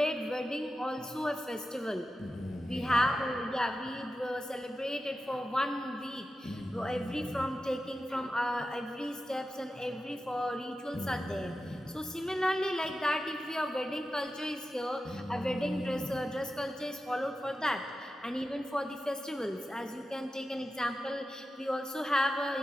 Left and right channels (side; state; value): both; normal; correlation 0.92